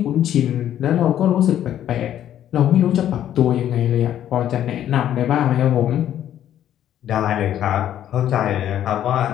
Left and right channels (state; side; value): quieter; right; 11.1 dB